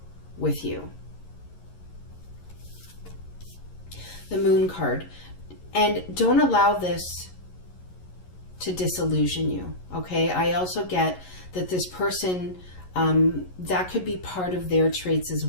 with you. The Moon card. And don't allow this to disillusion you. Okay. I also get that this person, that could be part of their traits as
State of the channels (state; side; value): late; right; 11 ms